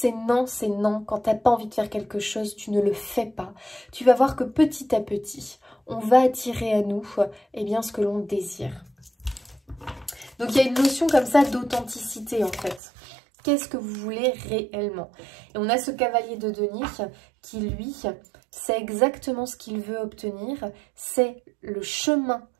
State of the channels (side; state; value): left; drops out; at 12.8 s